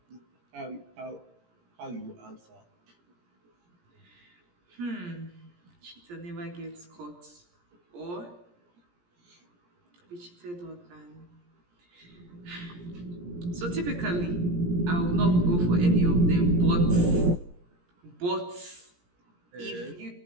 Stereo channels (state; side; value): late; left; 17 ms